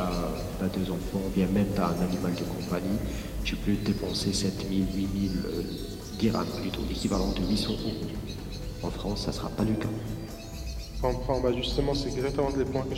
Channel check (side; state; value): both; identical; correlation 1.00